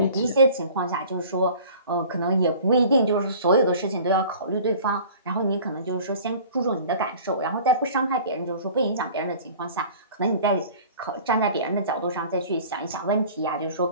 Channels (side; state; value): both; inverted; correlation -0.45